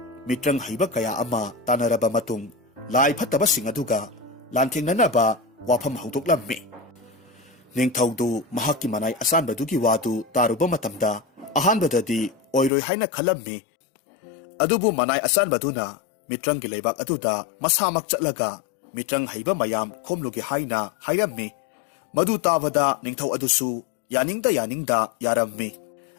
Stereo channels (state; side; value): drops out; right; at 12.7 s